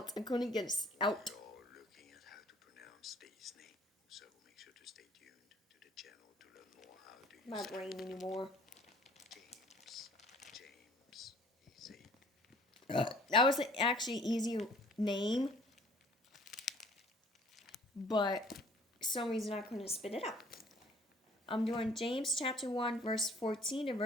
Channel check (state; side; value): normal; both; correlation 0.54